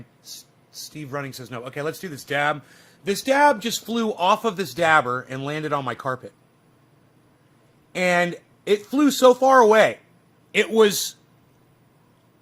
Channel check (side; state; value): both; identical; correlation 1.00